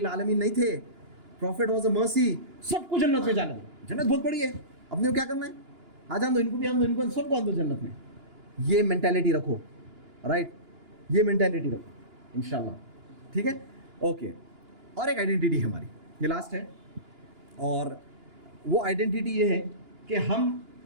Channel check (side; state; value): left; late; 2.9 ms